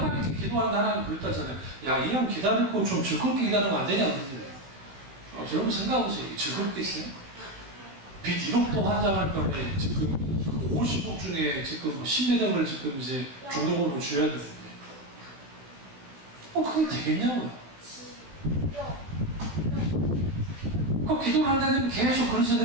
기도하는데 하나님 그랬다잖아요. 야, 이 형 기다리고 좀 즐겁게 기다리면 안 되냐 그러는데 여러분 생각해보세요. 즐겁게 있어요? 빚 1억도 환장할 경우에 지금 50억 중에 지금 10매덕을 지금 이제 중도금으로 줘야 되는데 그게 되겠냐고요. 그 기도를 한다면 계속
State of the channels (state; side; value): late; left; 16 ms